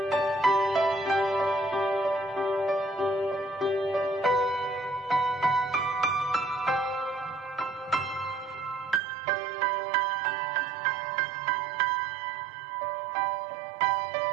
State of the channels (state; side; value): drops out; left; at 9.0 s